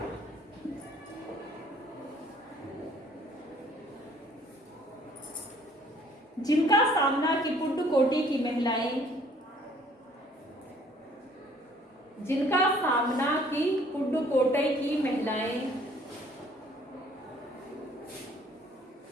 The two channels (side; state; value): both; normal; correlation 0.58